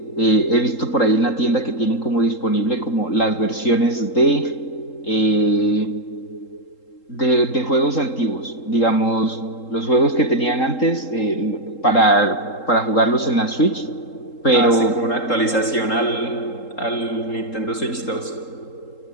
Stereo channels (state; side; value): late; right; 3.8 ms